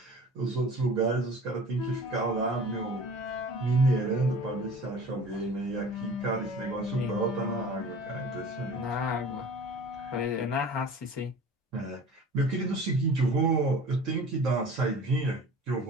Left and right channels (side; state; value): both; normal; correlation 0.42